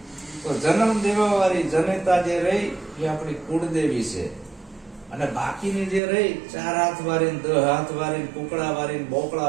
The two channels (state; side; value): drops out; left; at 6.0 s